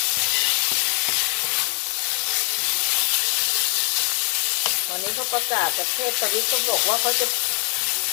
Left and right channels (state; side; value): quieter; right; 29.0 dB